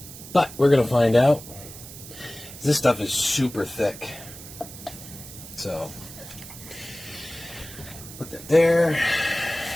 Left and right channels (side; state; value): right; noise; hiss, 15 dB below the sound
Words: But we're going to find out. This stuff is super thick. So, put that there.